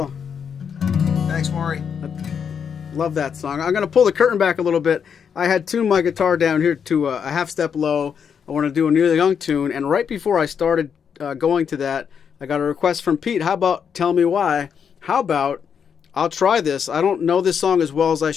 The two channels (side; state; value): right; quieter; 7.2 dB